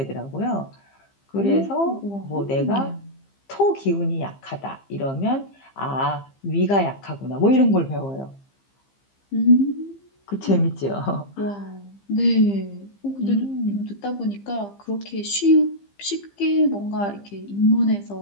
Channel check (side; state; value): right; late; 15 ms